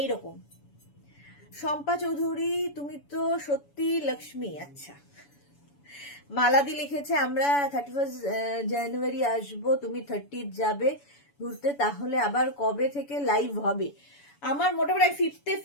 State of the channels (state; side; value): late; right; 7.0 ms